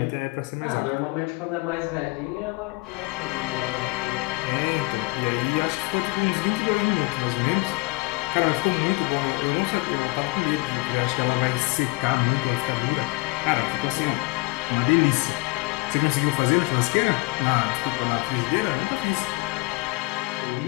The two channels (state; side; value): quieter; right; 24.6 dB